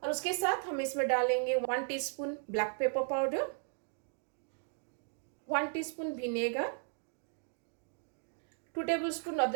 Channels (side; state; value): left; silent; 54 dB below the other